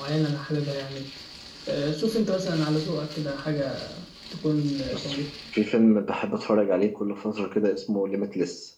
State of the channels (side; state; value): both; identical; correlation 1.00